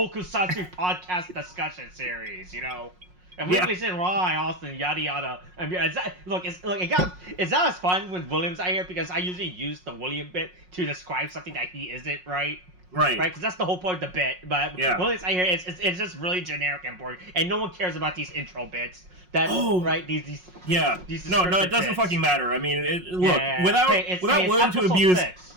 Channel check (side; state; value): left; late; 5.5 ms